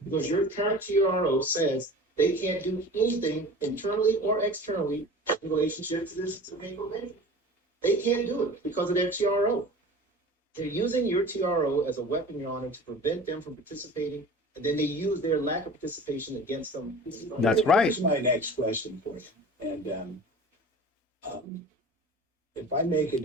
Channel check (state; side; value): normal; both; correlation 0.39